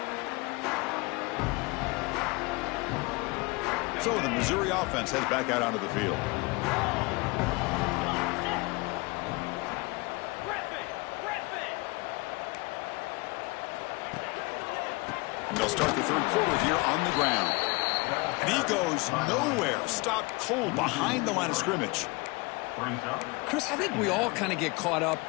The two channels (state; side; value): quieter; right; 25.9 dB